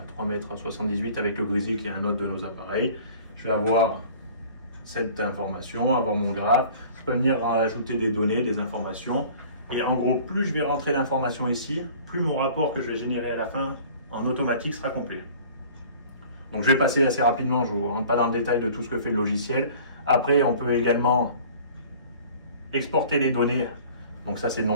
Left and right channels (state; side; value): inverted; both; correlation -0.47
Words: 3,78 m avec le Grizzly qui est un autre de nos appareils. Je vais avoir cette information, avoir mon graphe. Je peux venir ajouter des données, des informations. Et en gros, plus je vais rentrer d'informations ici, plus mon rapport que je vais générer à la fin en automatique sera complet. Donc je vais passer assez rapidement, je ne vous rentre pas dans le détail de tout ce que fait le logiciel. Après, on peut également exporter les données. Donc ça, c'est le